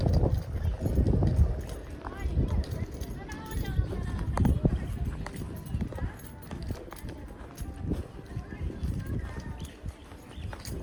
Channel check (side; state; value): both; identical; correlation 1.00